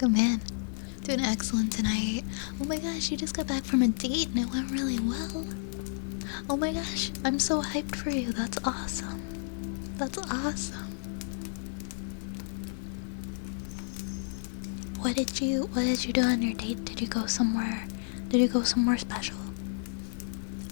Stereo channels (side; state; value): right; silent; 57 dB below the other